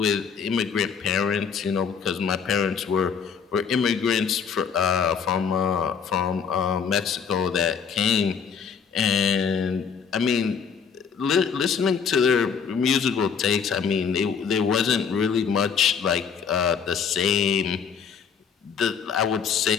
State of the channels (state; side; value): quieter; right; 6.6 dB